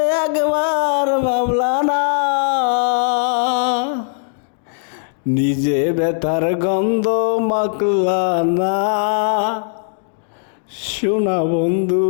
একবার ভাবলা না। নিজে ব্যথার গন্ধ মাখলা না, শোনা বন্ধু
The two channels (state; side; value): silent; right; digital silence